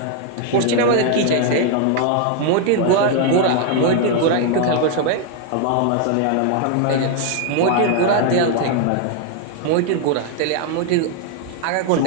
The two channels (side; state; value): both; different; correlation 0.00